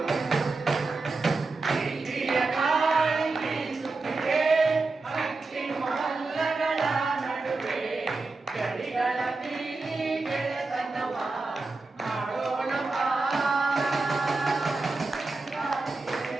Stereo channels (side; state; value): left; quieter; 3.6 dB